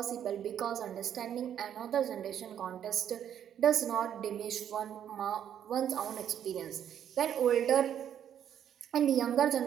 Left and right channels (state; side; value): quieter; left; 9.6 dB